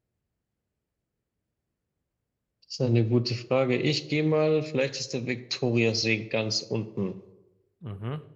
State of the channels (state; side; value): identical; both; correlation 1.00